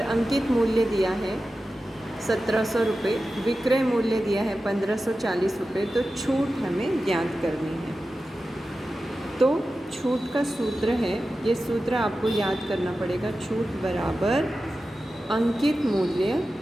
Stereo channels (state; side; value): normal; both; correlation 0.93